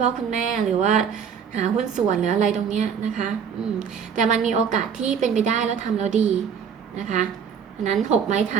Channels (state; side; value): quieter; left; 7.2 dB